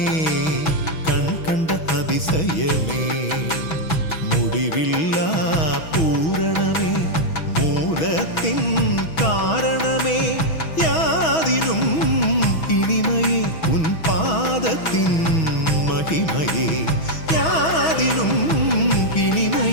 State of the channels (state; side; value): late; right; 6.2 ms